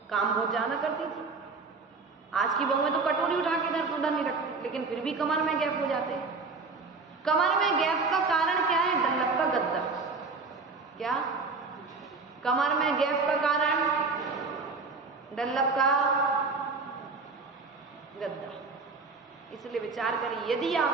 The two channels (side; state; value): left; quieter; 4.2 dB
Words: काम बहुत ज्यादा करती थी। आज की बहू में तो कटोरी उठा के इधर उधर नहीं रखती, लेकिन फिर भी कमर में गैप हो जाते हैं। कमर में गैप का कारण क्या है? डल्लभ का गद्दा। क्या? कमर में गैप का कारण डल्लभ का गद्दा। इसलिए विचार करिए, यदि